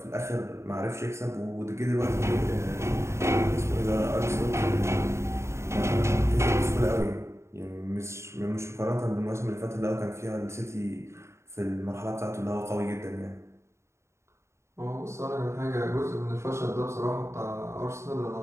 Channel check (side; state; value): left; late; 0.13 ms